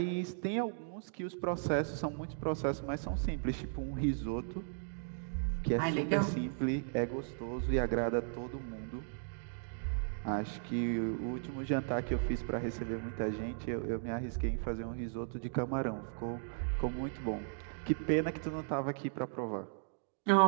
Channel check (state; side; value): silent; left; digital silence